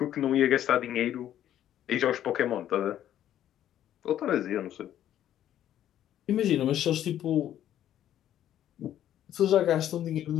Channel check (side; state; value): right; quieter; 11.4 dB